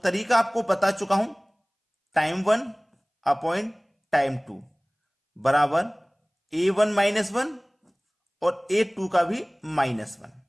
आपको बता चुका हूं, टाइम 1 अपॉइंट टाइम 2 बराबर A1 -1 और A2 का भी -1।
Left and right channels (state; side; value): identical; both; correlation 1.00